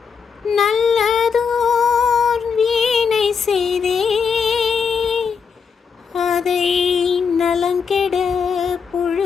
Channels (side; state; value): right; quieter; 6.1 dB